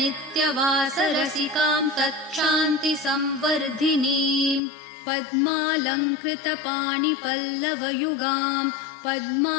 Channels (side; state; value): right; drops out; at 4.6 s